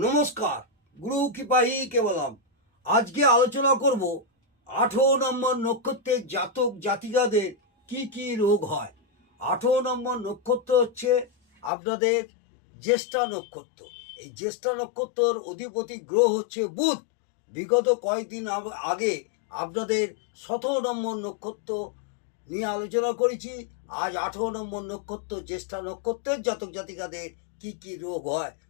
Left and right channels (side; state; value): right; drops out; at 11.7 s